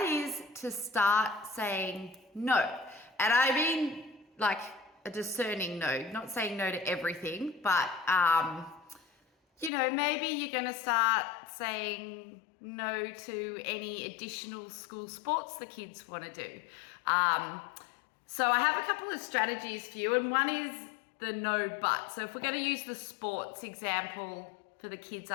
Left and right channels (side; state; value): right; drops out; at 9.7 s